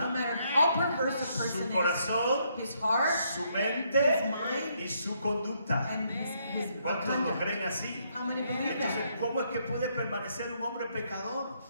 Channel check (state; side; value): inverted; both; correlation -0.73